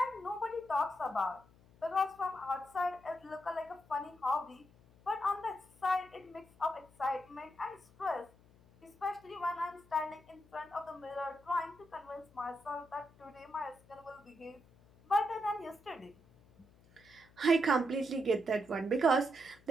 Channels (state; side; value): noise; left; hum, 27 dB below the sound